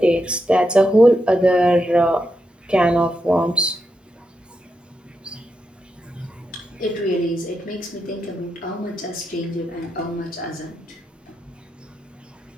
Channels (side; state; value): both; normal; correlation 0.85